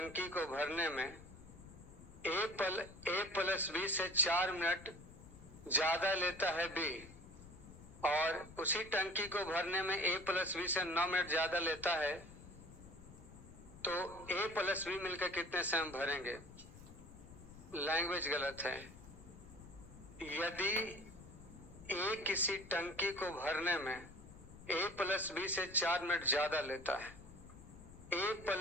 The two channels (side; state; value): left; noise; rumble, 18 dB below the sound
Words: में ए प्लस बी से 4 मिनट ज्यादा लेता है बी, और उसी टंकी को भरने में ए प्लस बी से 9 मिनट ज्यादा लेता है, तो ए प्लस बी मिलकर कितने समय भरेंगे? लैंग्वेज गलत है। यदि ए किसी टंकी को भरने में ए प्लस बी से 4 मिनट ज्यादा लेता है, ए